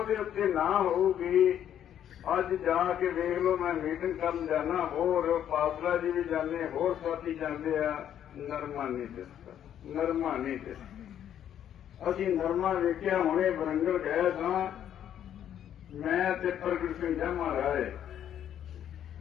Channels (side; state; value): right; quieter; 10.1 dB